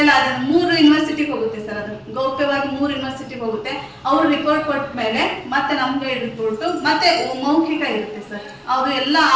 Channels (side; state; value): both; identical; correlation 1.00